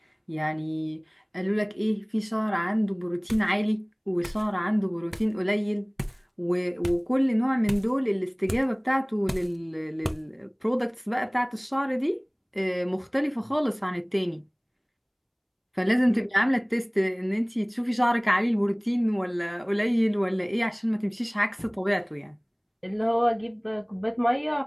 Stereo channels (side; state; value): both; identical; correlation 1.00